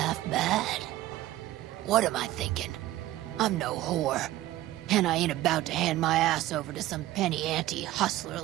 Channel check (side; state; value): left; quieter; 15.4 dB